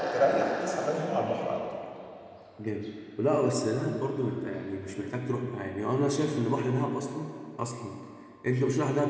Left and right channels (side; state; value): both; identical; correlation 1.00